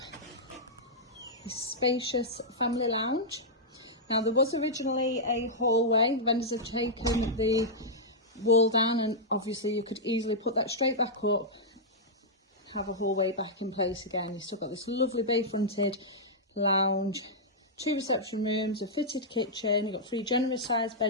the spacious family lounge. Now there was originally a hallway. Vendors have taken the wall down and obviously you could easily put that straight back up, have a hallway back in place again. You've still got this lovely bay fronted lounge, 2 reception rooms, a fitted kitchen. You've got 3 generous sized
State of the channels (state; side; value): normal; both; correlation -0.09